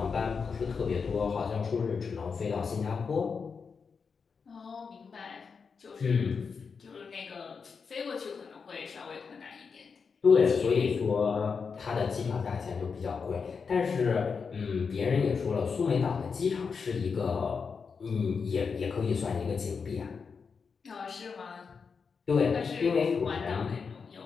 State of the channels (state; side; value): quieter; right; 5.5 dB